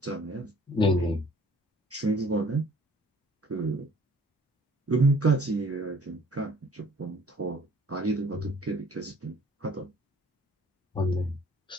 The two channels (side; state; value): both; normal; correlation 0.55